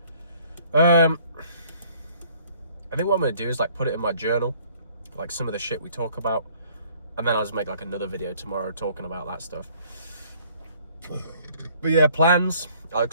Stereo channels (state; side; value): inverted; both; correlation -0.58